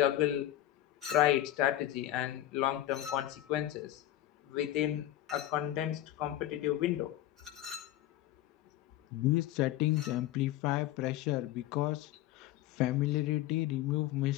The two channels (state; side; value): quieter; right; 14.0 dB